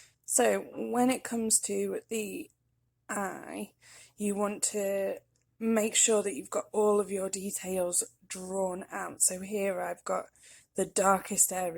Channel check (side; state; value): both; identical; correlation 1.00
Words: So when it comes to the eye, you want to make sure that you've got all of your details drawn out. So here I've got the darkest